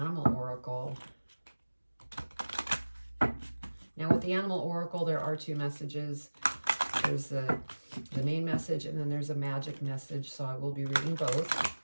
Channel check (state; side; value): inverted; both; correlation -1.00